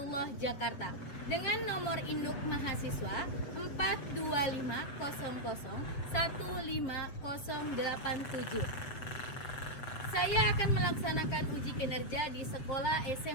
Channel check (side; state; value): right; late; 7.6 ms